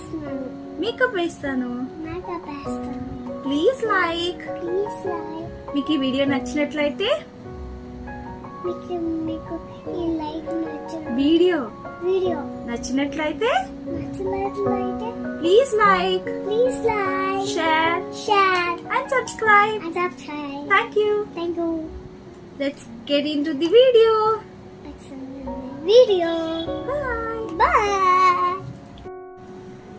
మేకప్ వేస్తాను. మేకప్ వేస్తాను. Please like. మీకు ఈ వీడియో నచ్చినట్లయితే మీకు ఈ లైక్ వీడియో వీడియో నచ్చినట్లయితే నచ్చినట్లయితే please like share and subscribe. subscribe. Thank you. Thank you. Let's get into the video. Video. Bye. Bye.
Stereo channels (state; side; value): identical; both; correlation 1.00